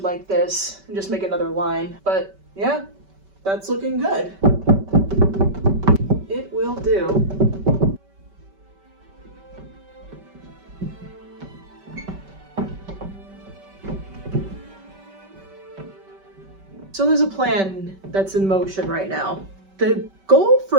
like this and just make another line. But yeah, that's looking good. It will do. So there's a plan that's in motion right now. The goal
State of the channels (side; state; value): left; late; 5.2 ms